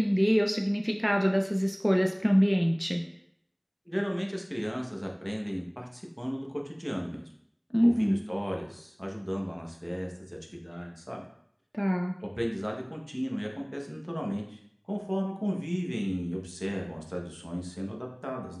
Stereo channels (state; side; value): identical; both; correlation 1.00